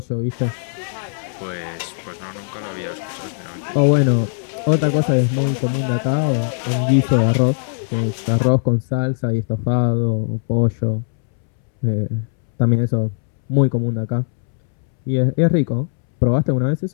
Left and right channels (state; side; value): silent; right; 66 dB below the other